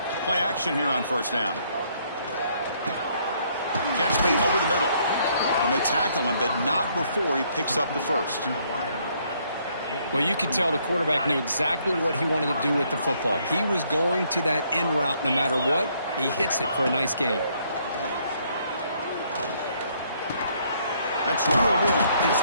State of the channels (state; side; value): inverted; both; correlation -0.68